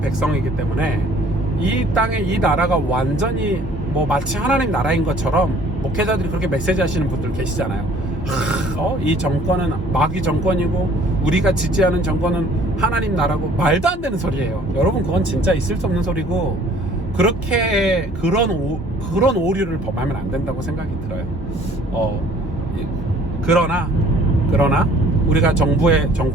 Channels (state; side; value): normal; both; correlation 0.55